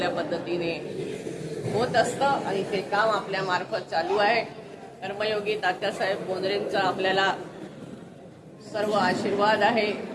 पद्धतीने होत असतं. आणि ते काम आपल्या मार्फत चालू आहे. कर्मयोगी तात्यासाहेब बोंद्रेंचा आपल्याला सर्व आशीर्वाद आहे.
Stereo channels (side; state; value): both; identical; correlation 1.00